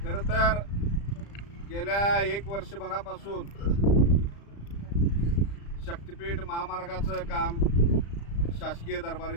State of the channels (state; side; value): late; right; 35 ms